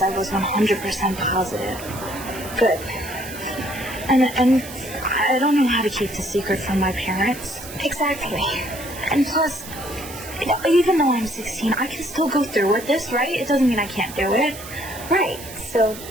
I was 100% positive. Good. And I don't know how to keep the secret from my parents. Exactly. And plus, even though I'm 16, I can still go through with this, right? It doesn't mean I can't do it. Right. So,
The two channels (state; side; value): noise; right; hiss, 14 dB below the sound